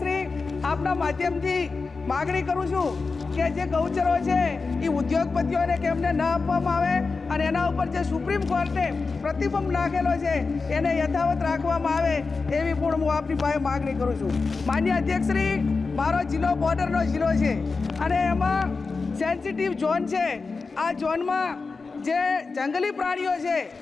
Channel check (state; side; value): quieter; right; 4.3 dB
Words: આપના માધ્યમથી માગણી કરું છું કે જે ગૌચરો છે એ ઉદ્યોગપતિઓને કેમને ન આપવામાં આવે અને એના ઉપર જે સુપ્રીમ કોર્ટે પ્રતિબંધ નાખેલો છે એને યથાવત રાખવામાં આવે એવી પણ હું આપની પાસે માગણી કરું છું. માન્ય અધ્યક્ષશ્રી, મારો જિલ્લો બોર્ડરનો જિલ્લો છે અને એમાં સેન્સિટિવ ઝોન છે. આ ઝોનમાં જે જંગલી પ્રાણીઓ છે